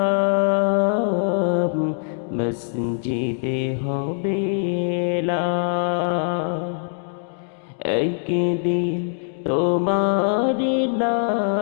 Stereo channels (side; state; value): right; silent; digital silence